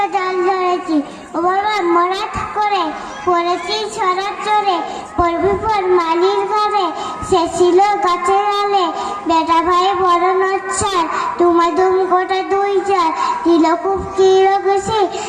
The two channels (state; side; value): identical; both; correlation 1.00